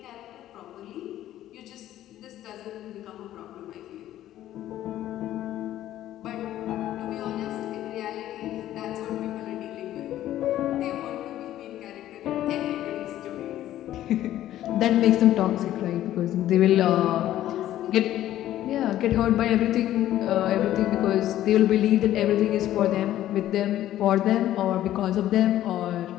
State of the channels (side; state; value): right; quieter; 13.1 dB